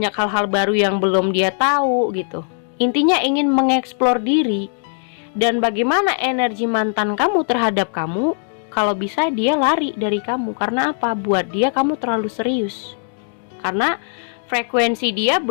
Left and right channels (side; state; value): right; silent; digital silence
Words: hal-hal baru yang belum dia tahu gitu. Intinya ingin mengeksplor diri. Dan bagaimana energi mantan kamu terhadap kamu? Kalau bisa dia lari dari kamu. Karena apa? Buat dia kamu terlalu serius. Karena frekuensi dia